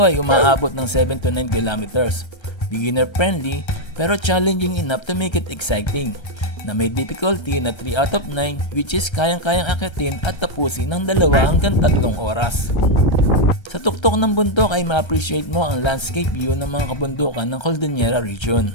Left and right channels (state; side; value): late; right; 1.3 ms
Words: umaabot ng 7 to 9 kilometers, beginner friendly pero challenging enough to make it exciting, na may difficulty na 3 out of 9 which is kayang-kayang akitin at tapusin ng 2 hanggang 3 oras. Sa tuktok ng bundok ay ma-appreciate mo ang landscape view ng mga kabundukan ng Cordillera region.